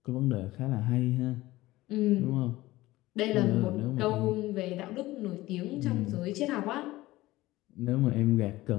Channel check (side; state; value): right; quieter; 17.9 dB